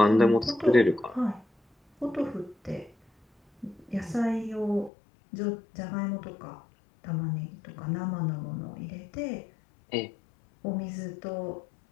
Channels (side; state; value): right; drops out; at 4.9 s